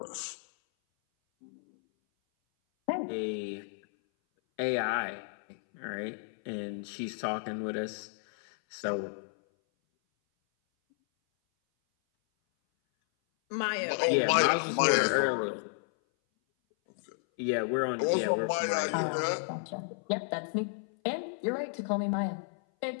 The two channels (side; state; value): right; silent; 56 dB below the other